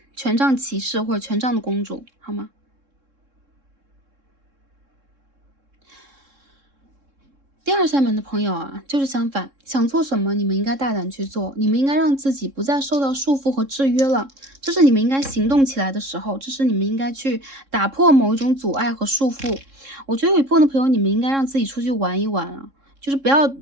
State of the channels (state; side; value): late; left; 3.7 ms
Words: 权杖骑士或者权杖的公主，好吗？第2扇门的朋友就是相反，想做什么你们应该大胆去做，你们应该让自己不再受到束缚和制约了，这是你们应该行动起来的时候，这是你们应该去打破某一种阻碍和束缚。我觉得有一部分的朋友，你们应该让自己出去玩一玩就是不要